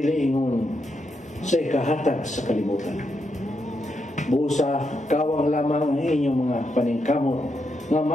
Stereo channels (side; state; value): both; normal; correlation 0.82